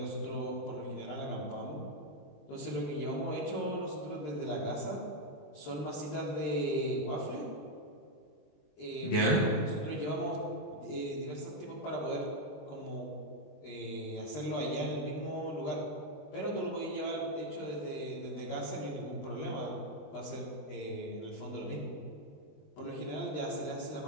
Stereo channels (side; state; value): right; late; 20 ms